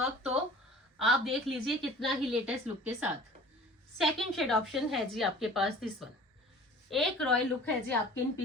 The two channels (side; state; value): both; normal; correlation 0.45